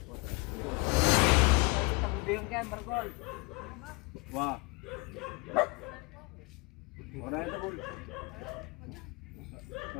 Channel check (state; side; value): quieter; right; 27.2 dB